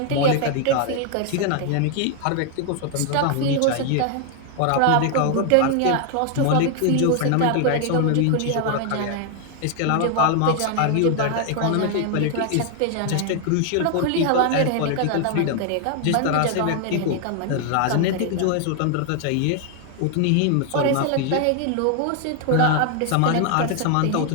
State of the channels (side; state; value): both; different; correlation 0.00